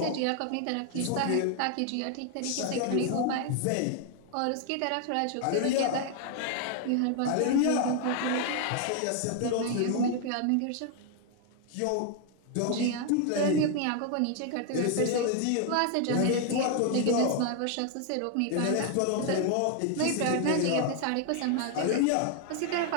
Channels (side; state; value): both; different; correlation 0.00